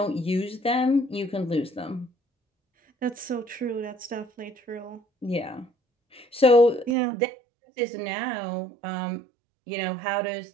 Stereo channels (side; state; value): left; drops out; at 7.0 s